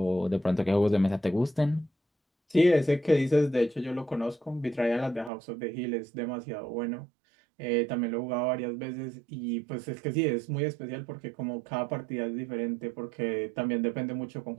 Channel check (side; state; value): left; drops out; at 5.3 s